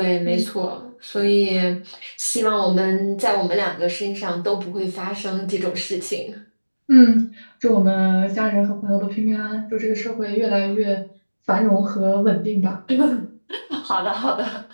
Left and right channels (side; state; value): both; inverted; correlation -1.00